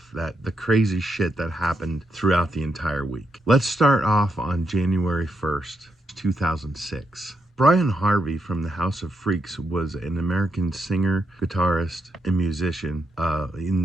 crazy shit that happened throughout the entire week. Let's start off on January 1st, 2006. Brian Harvey from the House of Freaks was an American singer, guitarist, and musician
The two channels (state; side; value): normal; both; correlation 0.81